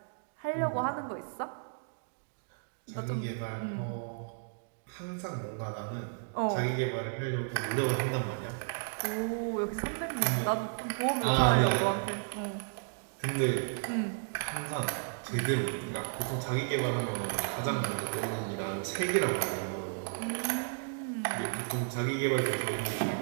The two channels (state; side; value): silent; left; digital silence